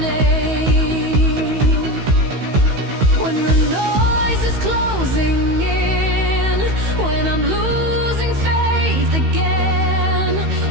When the noise is closing in, when I'm losing faith again,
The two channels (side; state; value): left; late; 16 ms